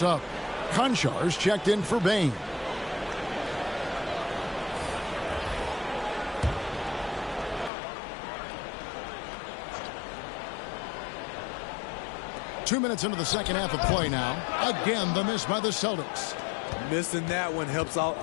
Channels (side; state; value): right; drops out; at 7.7 s